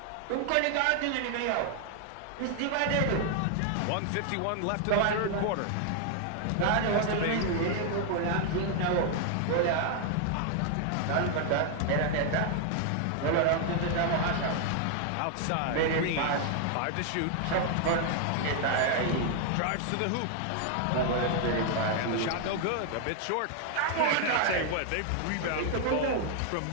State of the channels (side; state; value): both; different; correlation 0.00